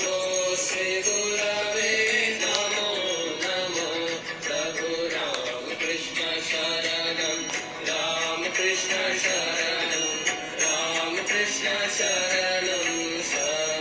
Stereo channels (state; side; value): identical; both; correlation 1.00